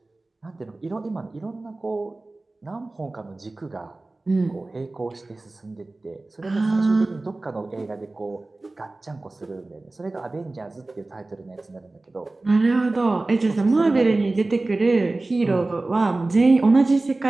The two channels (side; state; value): left; quieter; 3.1 dB